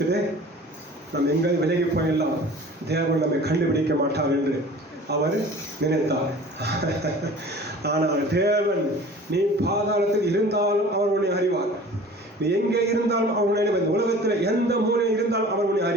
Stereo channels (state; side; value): normal; both; correlation 0.44